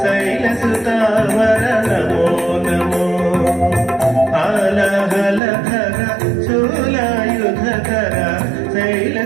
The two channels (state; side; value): drops out; left; at 5.4 s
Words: శైలసుతావర నమో నమో ఆలహలధర శూలయుధకర